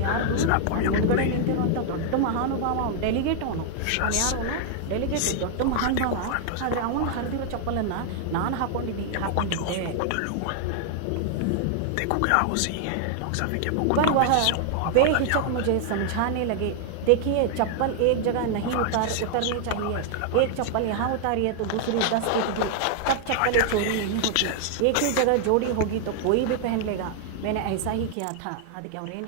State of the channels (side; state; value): both; different; correlation 0.00